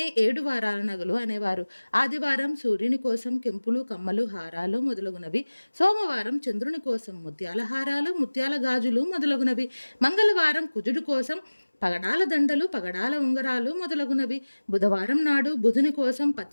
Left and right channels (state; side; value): inverted; both; correlation -1.00